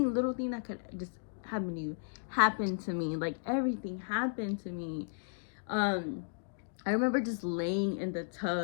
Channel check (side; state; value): right; silent; digital silence